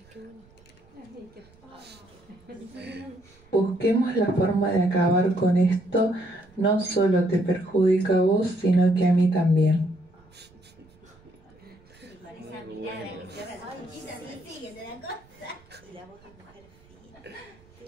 Busquemos la forma de acabar con esto. No solo te perjudica a vos, sino que a mí también.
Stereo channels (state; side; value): noise; right; rumble, 28 dB below the sound